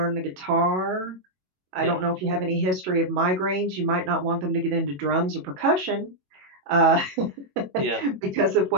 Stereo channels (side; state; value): left; late; 22 ms